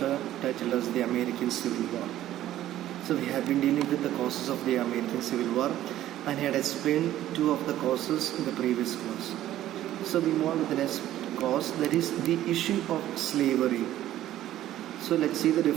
titled as the American Civil War. So we have been dealing with the causes of the American Civil War and had explained two of the causes in the previous class. So we move on with the next cause, that is the issue of slavery. So let's see the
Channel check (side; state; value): left; quieter; 13.2 dB